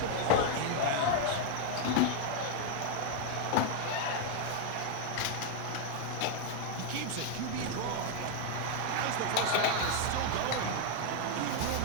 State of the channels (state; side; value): different; both; correlation 0.00